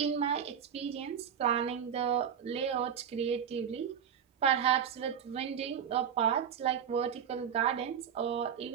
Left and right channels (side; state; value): left; quieter; 8.2 dB